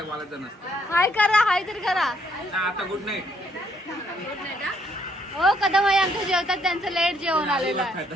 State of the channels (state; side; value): normal; both; correlation 0.70